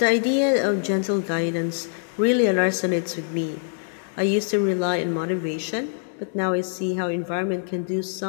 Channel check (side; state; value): right; silent; digital silence